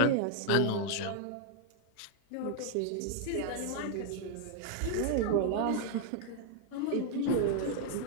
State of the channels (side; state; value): both; different; correlation -0.01